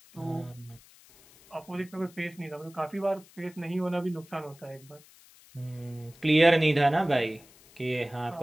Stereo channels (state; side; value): noise; left; hiss, 25 dB below the sound